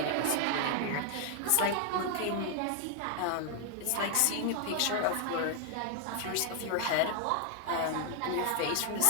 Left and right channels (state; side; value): different; both; correlation 0.00